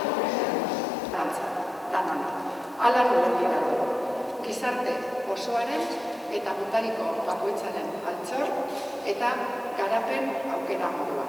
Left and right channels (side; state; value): both; normal; correlation 0.91